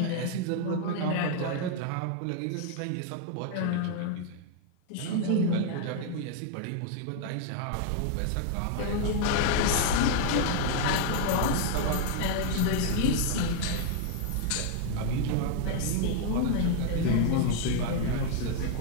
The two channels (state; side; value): different; both; correlation 0.00